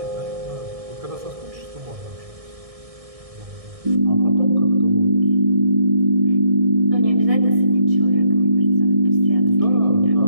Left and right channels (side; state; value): left; late; 1.6 ms